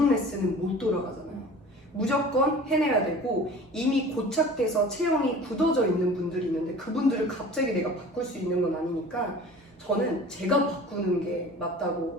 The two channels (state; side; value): normal; both; correlation 0.42